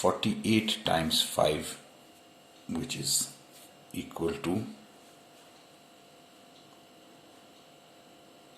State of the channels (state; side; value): identical; both; correlation 1.00